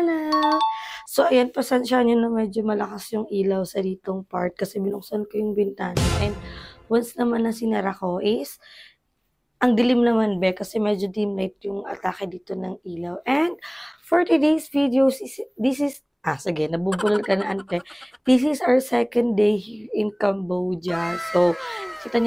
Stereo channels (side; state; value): both; identical; correlation 1.00